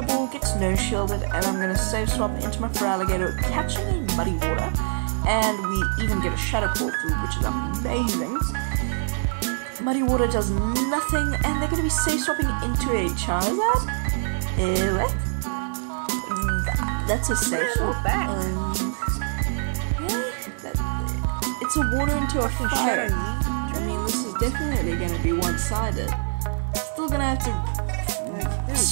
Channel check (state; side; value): silent; left; digital silence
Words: Ball gets no shielded, and I'm going to save swap into my Feraligatr, catching a Muddy Water, and we even get a Shadow Ball through, which is amazing. Muddy Water does nothing, and they're going to be safe swapping into a Charizard. What? That's a safe swap. It's a water into a fire. I mean, this is definitely going to be one-sided. Still going to have to